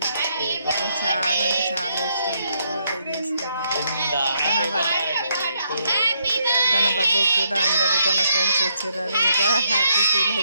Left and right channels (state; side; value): inverted; both; correlation -0.75